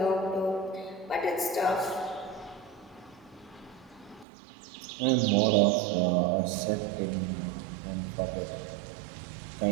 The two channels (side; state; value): left; drops out; at 4.2 s